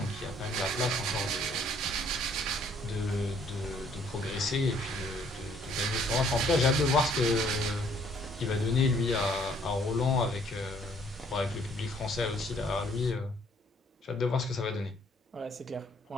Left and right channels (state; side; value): normal; both; correlation 0.62